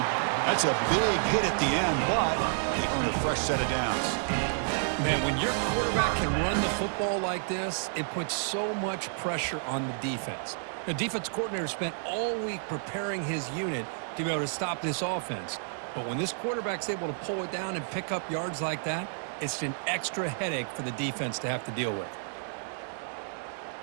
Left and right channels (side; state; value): left; silent; digital silence